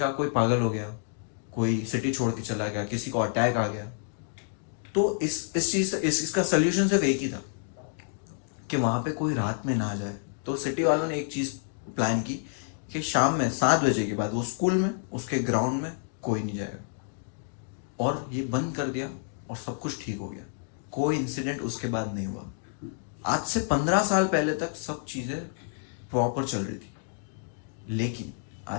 कोई पागल हो गया, कोई सिटी छोड़ के चला गया, किसी को अटैक आ गया। तो इसका सोल्यूशन सिर्फ एक ही था कि वहां पे कोई रात में ना जाए। तो सिटी वालों ने एक चीज प्लान की कि शाम में 7 बजे के बाद वो स्कूल में उसके ग्राउंड में कोई नहीं जाएगा, और ये बंद कर दिया और सब कुछ ठीक हो गया। कोई इंसिडेंट उसके बाद नहीं हुआ। आज से 15 साल पहले तक सब चीजें प्रॉपर चल रही थी, लेकिन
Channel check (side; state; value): right; silent; digital silence